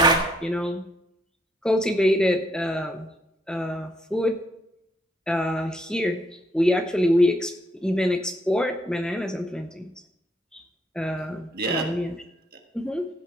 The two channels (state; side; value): normal; both; correlation 0.72